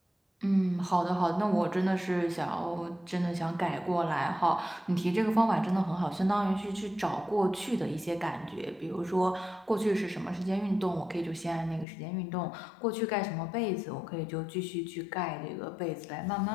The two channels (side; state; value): right; drops out; at 11.9 s